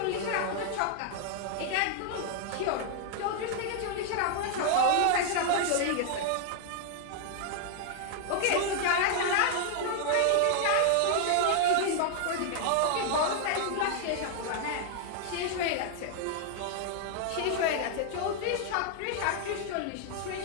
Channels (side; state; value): both; different; correlation 0.00